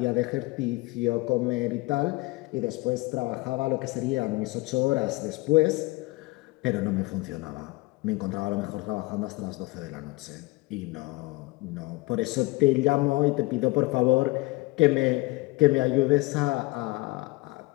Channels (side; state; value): right; quieter; 22.6 dB